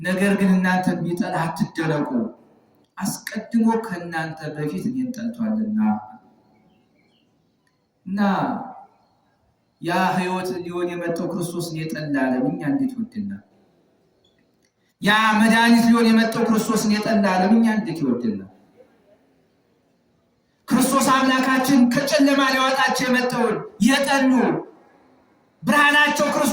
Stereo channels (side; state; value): both; identical; correlation 1.00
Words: ግን እናንተን ቢጠላ አትደነቁ፣ አስቀድሞ ከእናንተ በፊት እኔን ጠልቷልና። እና ያ ህይወት ሊሆን የመጣው ክርስቶስን የጠላ ዓለም እኛ እንዴት ይወደናል? ያ መድኃኒት ሊሆን የመጣው ክርስቶስን የጠላ ዓለም እኛ እንዴት ይወደናል? ክርስቶስ አምላካችን ከጨለማ ሊያወጣቸው የመጣውን የጠሉ ብርሃናቸው